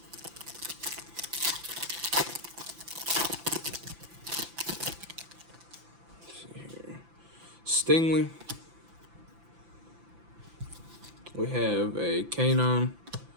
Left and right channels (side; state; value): left; late; 5.9 ms